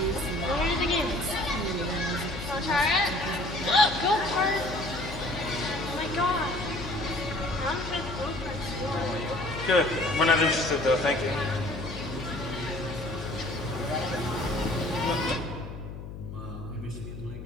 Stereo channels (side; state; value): left; noise; hum, 10 dB below the sound